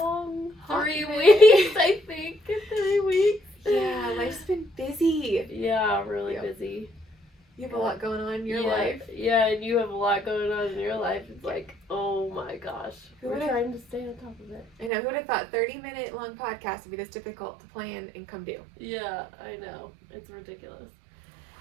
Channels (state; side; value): drops out; left; at 14.9 s